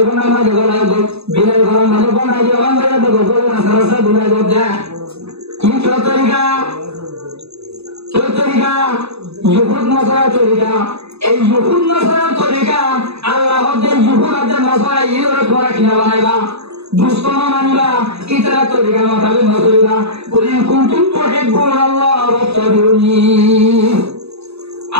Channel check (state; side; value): late; left; 0.79 ms